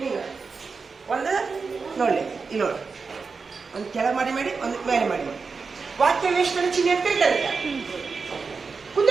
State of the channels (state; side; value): quieter; left; 4.8 dB